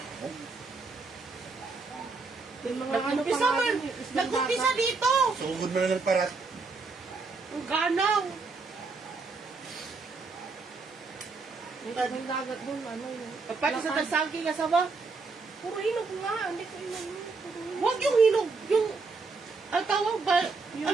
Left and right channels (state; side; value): quieter; left; 4.2 dB